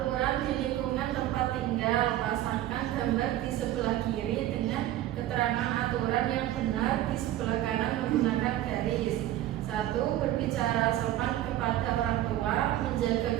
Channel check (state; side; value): quieter; left; 13.7 dB